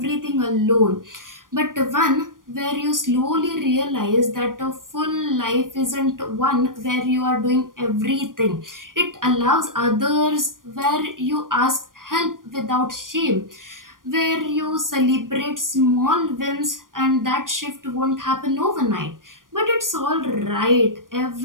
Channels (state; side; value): late; left; 0.90 ms